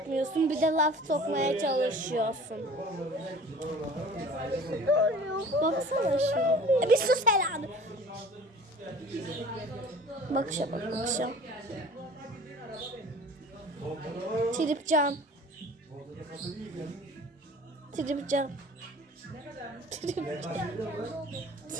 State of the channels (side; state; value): both; normal; correlation 0.45